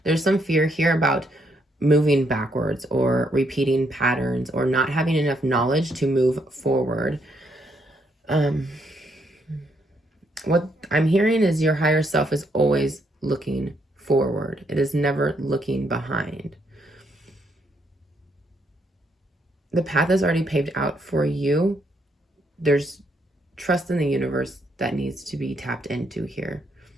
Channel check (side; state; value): both; normal; correlation 0.74